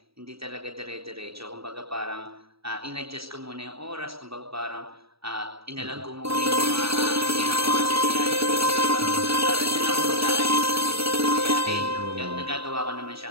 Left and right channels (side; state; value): left; late; 0.77 ms